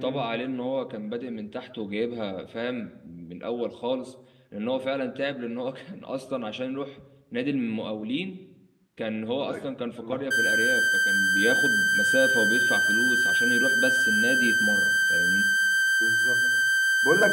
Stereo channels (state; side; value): identical; both; correlation 1.00